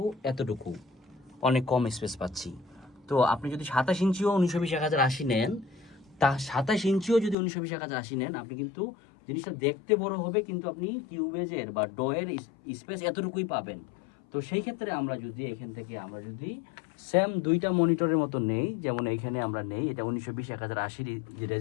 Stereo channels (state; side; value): drops out; right; at 7.4 s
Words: এতটুকু, অনেক কম স্পেস পাচ্ছি। তো আপনি যদি 27 ইঞ্চিও 1920 1080 নেন, তা 27 ইঞ্চিও যদি 1920 1080 নেন, আপনি কিন্তু জিনিসটা দেখতে বড় হবে, কিন্তু আপনি কিউবেজের বা ডয়ের স্পেস এতটুকুই পাবেন। তো সেই ক্ষেত্রে আমরা যদি এখান থেকে আমরা যদি সেম দুইটা মনিটরের মতো নেই, যেমন এইখানে আমরা নেই, এটা 1920 1080 যে